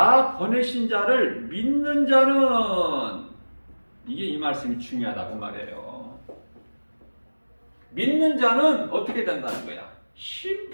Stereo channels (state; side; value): inverted; both; correlation -1.00